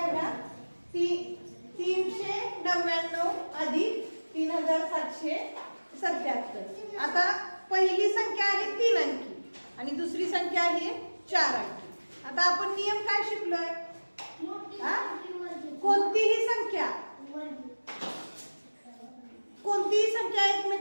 बघा. 399 अधिक 3777. आता पहिली संख्या आहे 3 अंकी आणि दुसरी संख्या आहे 4 अंकी. आता आपण नियम काय शिकलोय? कोणतीही संख्या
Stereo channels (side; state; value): both; inverted; correlation -1.00